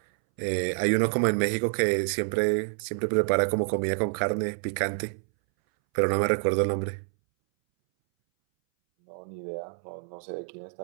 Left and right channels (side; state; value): left; silent; 60 dB below the other